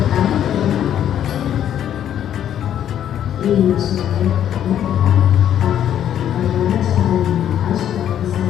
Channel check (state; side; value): quieter; right; 10.3 dB